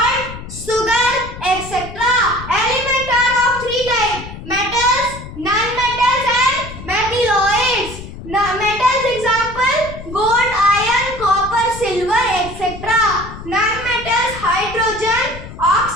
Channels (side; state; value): left; noise; rumble, 12 dB below the sound